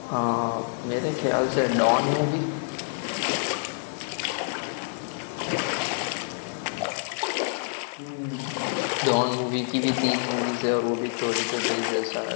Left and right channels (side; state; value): right; silent; digital silence